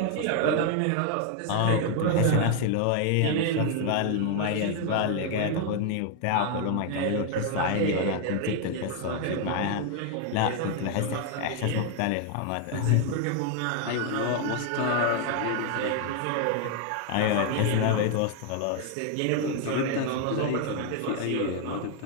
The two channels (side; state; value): both; different; correlation 0.00